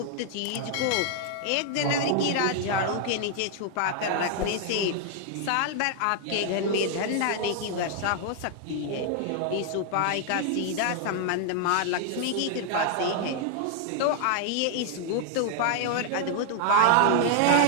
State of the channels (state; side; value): different; both; correlation 0.00